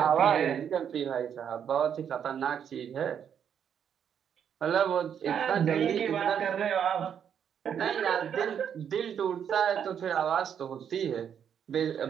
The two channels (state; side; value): quieter; left; 8.4 dB